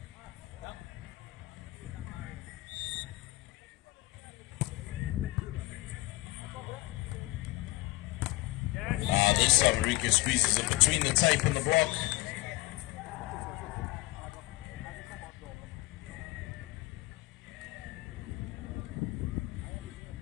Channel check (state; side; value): quieter; right; 20.2 dB